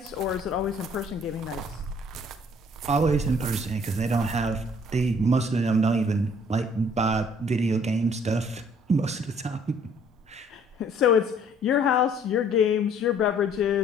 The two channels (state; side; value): normal; both; correlation 0.59